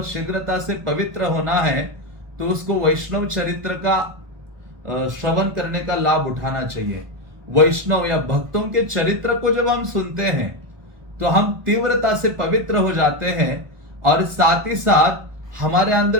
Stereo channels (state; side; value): late; left; 1.2 ms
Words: शीघ्रता से पवित्र होना है तो उसको वैष्णव चरित्र का श्रवण करने का लाभ उठाना चाहिए। वैष्णव या भक्तों के चरित्र को जब हम सुनते हैं तो हम तीव्रता से पवित्र हो जाते हैं, और साथ ही साथ हमारे